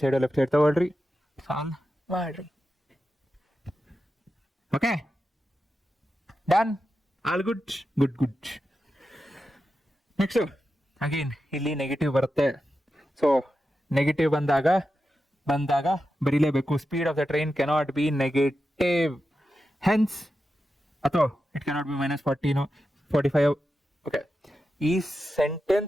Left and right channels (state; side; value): normal; both; correlation 0.90